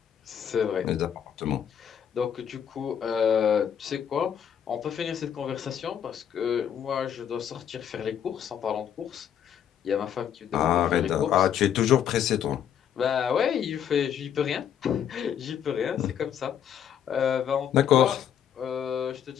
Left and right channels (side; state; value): right; quieter; 9.0 dB